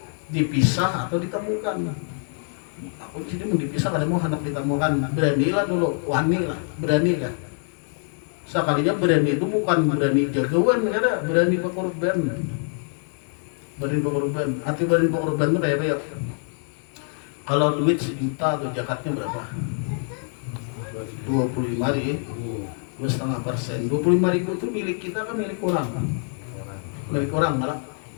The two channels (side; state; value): right; silent; 59 dB below the other